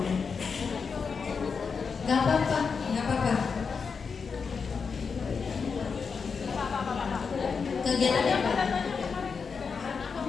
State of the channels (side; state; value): right; quieter; 5.5 dB